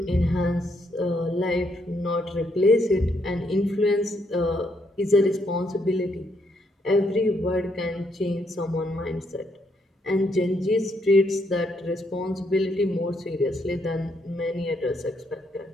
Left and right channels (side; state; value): both; normal; correlation 0.74